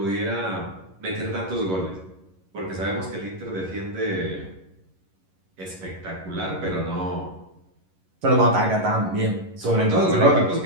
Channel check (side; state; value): left; late; 11 ms